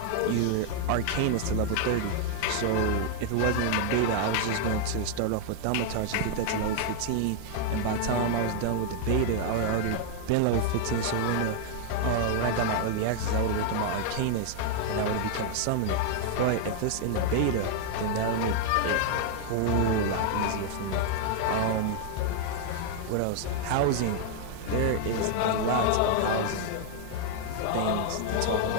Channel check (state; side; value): different; both; correlation 0.00